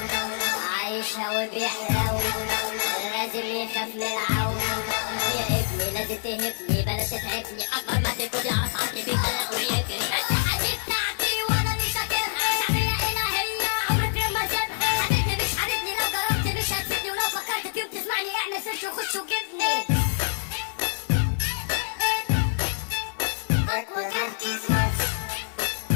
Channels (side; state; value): right; silent; 61 dB below the other